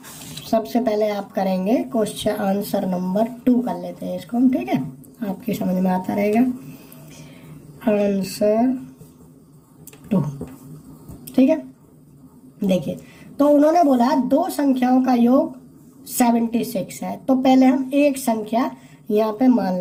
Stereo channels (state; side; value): identical; both; correlation 1.00